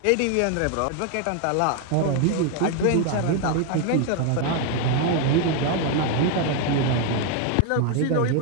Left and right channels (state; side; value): different; both; correlation 0.01